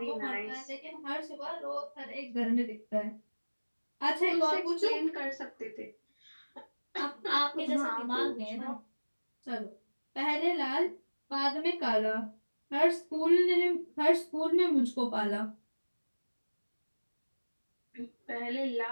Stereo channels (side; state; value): both; inverted; correlation -1.00